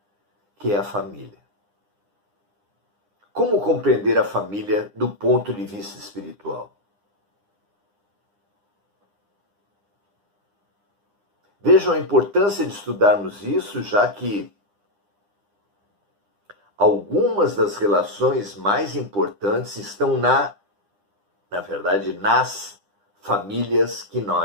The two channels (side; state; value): left; late; 9.9 ms